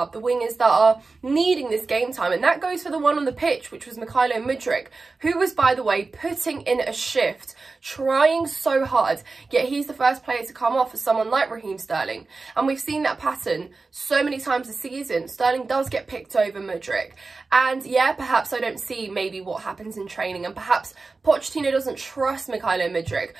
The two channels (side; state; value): left; quieter; 3.9 dB